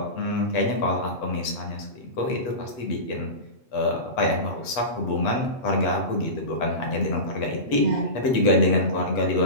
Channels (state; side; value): late; right; 8.1 ms